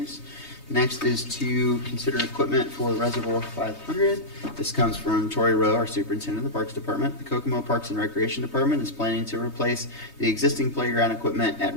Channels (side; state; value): right; late; 3.2 ms